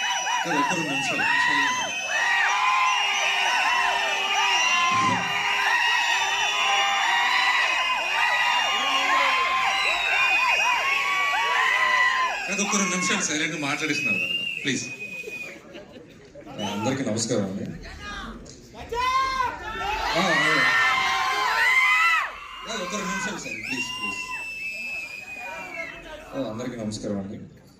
ఒక్క 2 నిమిషాలు సైలెంట్ మాట్లాడిస్తున్నారు ప్లీజ్. అందరికీ నమస్కారం అండి. ఒక్క 2 నిమిషాలు సార్ ప్లీజ్ ప్లీజ్. అందరికీ నమస్కారం అండి.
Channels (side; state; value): both; identical; correlation 1.00